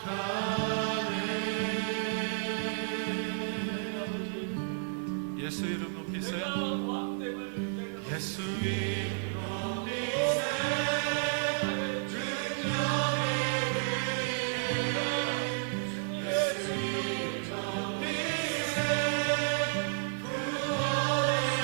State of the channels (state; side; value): silent; left; 57 dB below the other